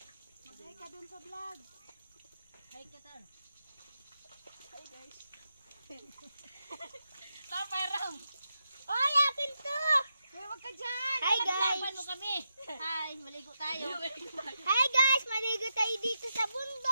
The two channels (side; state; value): both; inverted; correlation -0.87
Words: Mag-hi ka dun sa vlog. Hi, Katar. Hi guys. Taparam! Oy! Akin to! Hoy, wag ka dyan! Hi guys! Naglaban mo kami. Hi! Maligo tayo. Hi guys! Maligo tayo dito sa